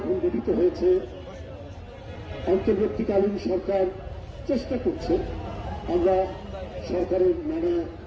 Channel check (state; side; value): identical; both; correlation 1.00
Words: গঠিত হয়েছে, অন্তর্বর্তীকালীন সরকার চেষ্টা করছে, আমরা সরকারের নানা